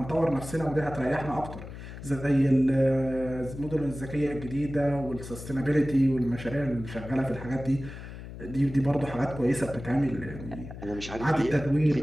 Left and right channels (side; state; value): left; noise; hum, 12 dB below the sound